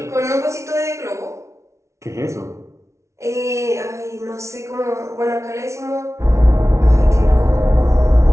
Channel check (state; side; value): late; left; 0.14 ms